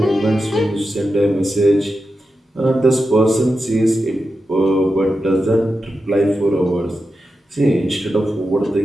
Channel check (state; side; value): normal; both; correlation 0.90